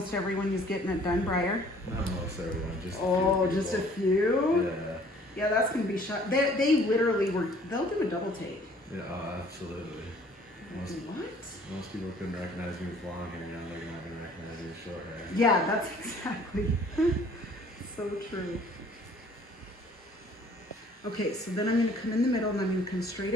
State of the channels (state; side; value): normal; both; correlation 0.55